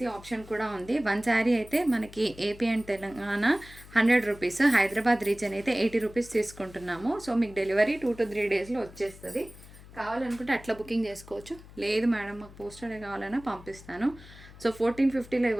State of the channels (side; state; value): left; noise; hum, 19 dB below the sound